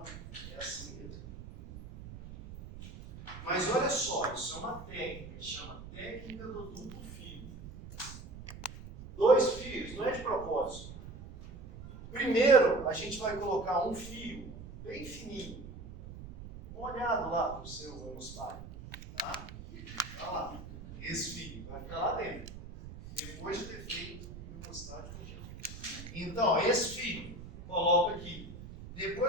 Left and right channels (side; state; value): right; noise; rumble, 13 dB below the sound